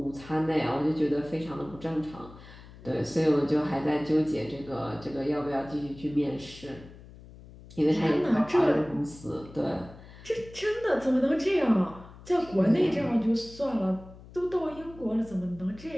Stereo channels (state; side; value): noise; left; hum, 19 dB below the sound